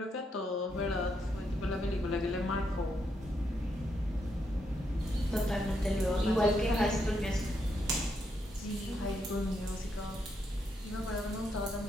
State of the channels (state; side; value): normal; both; correlation 0.79